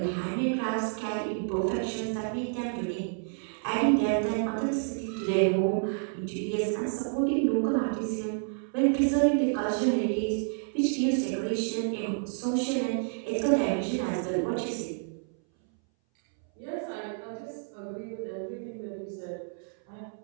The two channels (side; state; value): left; silent; 58 dB below the other